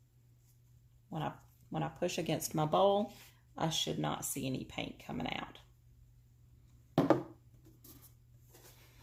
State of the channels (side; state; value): both; identical; correlation 1.00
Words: When I push against my bowl, I should not see any paint coming out.